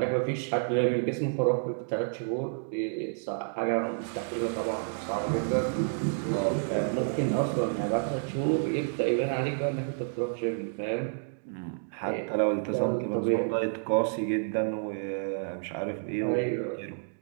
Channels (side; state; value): left; silent; digital silence